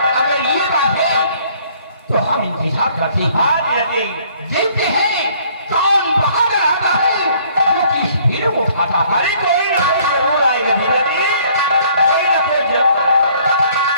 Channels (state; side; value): inverted; both; correlation -0.60